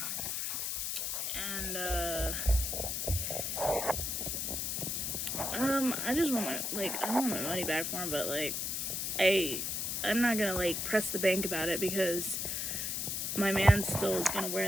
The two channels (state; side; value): noise; left; hiss, 1 dB below the sound